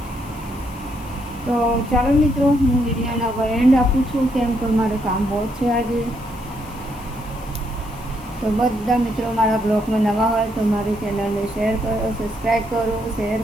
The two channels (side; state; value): left; noise; hiss, 23 dB below the sound